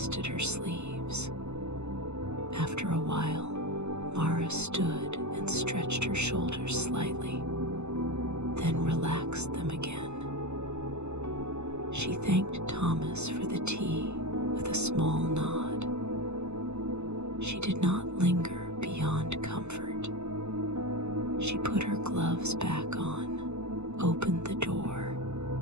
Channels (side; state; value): left; late; 0.82 ms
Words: her sleeves. After a while, Mara stood and stretched her shoulders slightly, then relaxed them again. She thanked Thomas for the tea with a small nod. She did not linger beyond comfort. She put her gloves back on, opened the door,